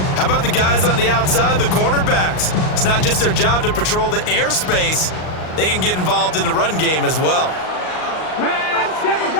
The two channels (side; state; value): right; late; 38 ms